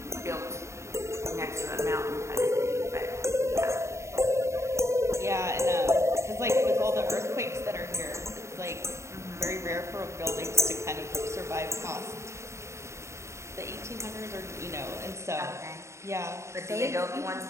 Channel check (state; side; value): late; left; 0.14 ms